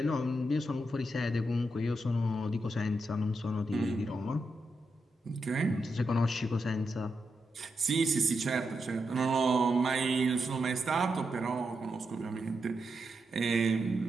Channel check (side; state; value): both; normal; correlation 0.85